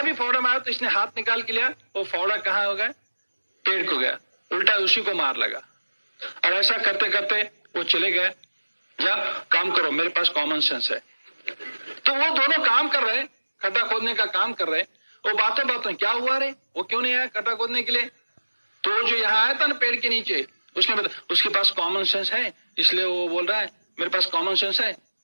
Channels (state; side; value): inverted; both; correlation -1.00